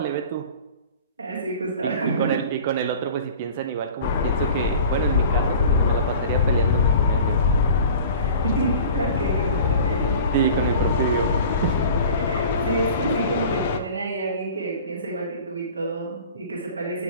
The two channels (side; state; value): both; inverted; correlation -0.42